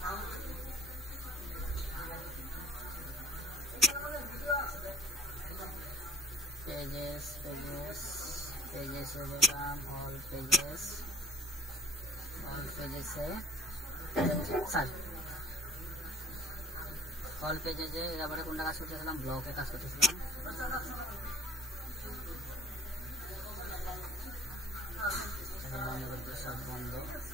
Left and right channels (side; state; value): both; normal; correlation 0.49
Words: pages এ গেলাম, all pages এ স্যার all pages এ এবারে কোনটা কাজ করতেছিলাম, ব্লকে কাজ করতেছিলাম। বন্ধ করে দিই, সব বন্ধ।